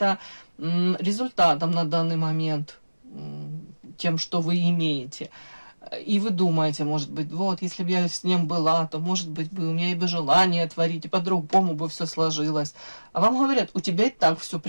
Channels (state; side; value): inverted; both; correlation -1.00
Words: результатом на данный момент, тем, что вы имеете. И вы думаете, может быть, вот, если бы я с ним была, то, может быть, бы у меня и бы желание творить, и по-другому бы все сложилось. А вам говорят, у тебя и так все